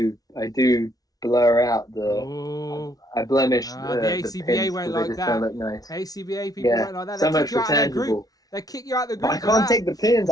blur out I blemish the ACBA won't like that. Look nice. ACBA people won't like that. So much for tangible. They kick you out of the group. But I can't take the pins.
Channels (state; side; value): late; right; 0.18 ms